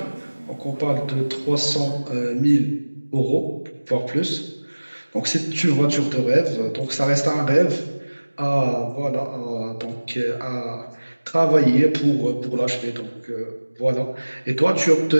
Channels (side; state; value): both; inverted; correlation -1.00